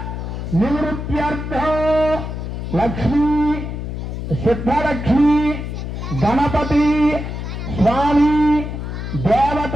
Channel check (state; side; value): noise; left; hum, 6 dB below the sound